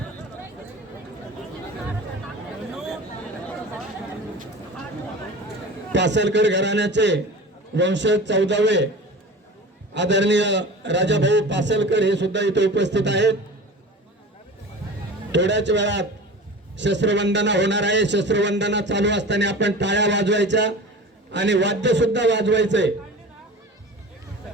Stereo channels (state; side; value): normal; both; correlation 0.36